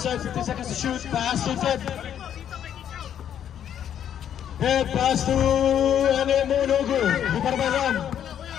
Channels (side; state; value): right; quieter; 9.7 dB